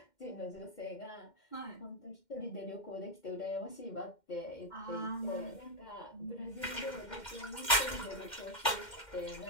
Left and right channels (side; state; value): right; late; 2.1 ms